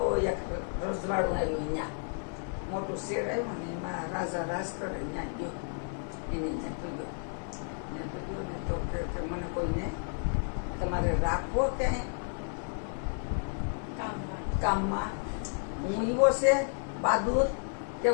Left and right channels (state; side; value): silent; right; 56 dB below the other